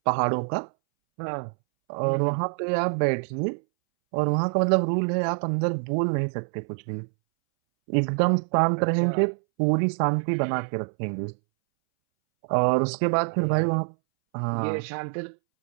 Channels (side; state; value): left; silent; 61 dB below the other